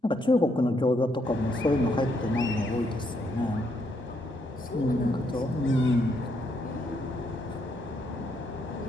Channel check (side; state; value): both; normal; correlation 0.75